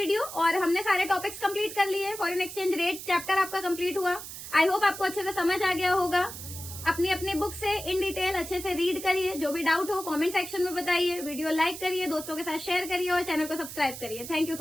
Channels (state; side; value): noise; right; hiss, 11 dB below the sound